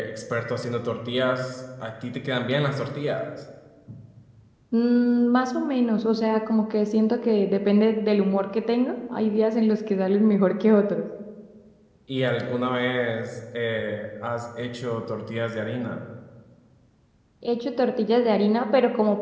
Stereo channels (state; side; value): identical; both; correlation 1.00